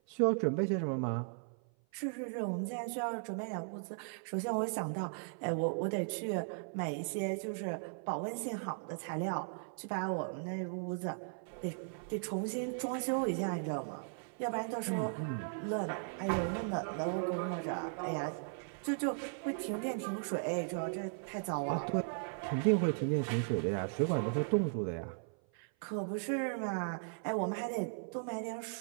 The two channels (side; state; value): left; silent; 53 dB below the other